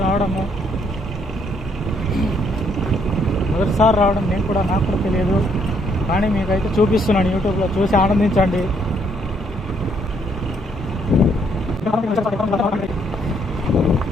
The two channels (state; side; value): normal; both; correlation 0.70